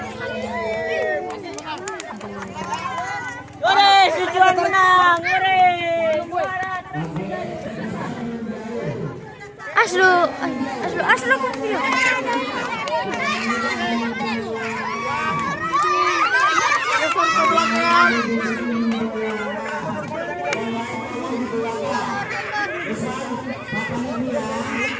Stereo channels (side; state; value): both; identical; correlation 1.00